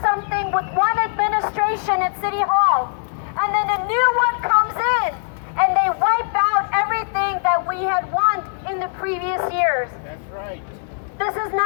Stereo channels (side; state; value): right; silent; digital silence